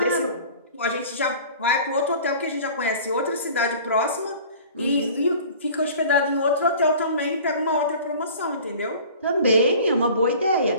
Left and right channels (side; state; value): both; inverted; correlation -0.44